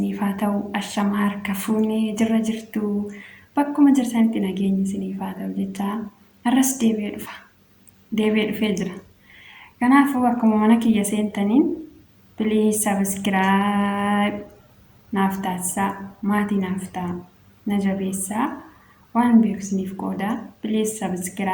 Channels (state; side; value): identical; both; correlation 1.00